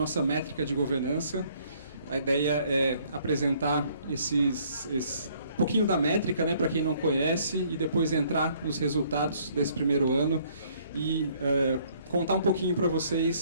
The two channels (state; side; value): inverted; both; correlation -0.63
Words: métrica de governança. A ideia é apresentar um pouquinho da métrica, né, para quem não conhece, e depois entrar nos resultados desse primeiro ano e contar um pouquinho para